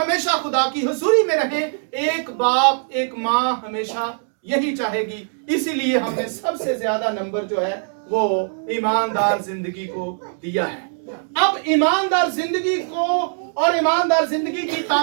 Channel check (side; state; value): left; silent; digital silence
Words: खुदा की हुजूरी में रहें। एक बाप एक माँ हमेशा यही चाहेगी। इसीलिए हमने सबसे ज्यादा नंबर जो है वो ईमानदार जिंदगी को दिया है। अब ईमानदार जिंदगी को और ईमानदार जिंदगी की